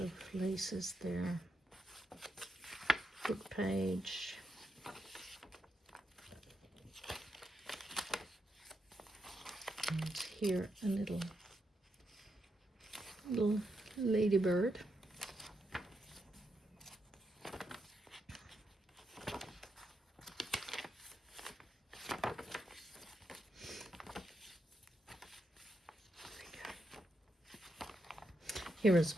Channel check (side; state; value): both; normal; correlation 0.83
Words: laces there. Book page. And here a little ladybird. Here as